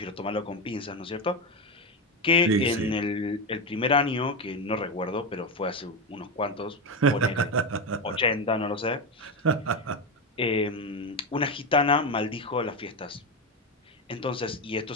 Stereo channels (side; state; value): both; normal; correlation 0.13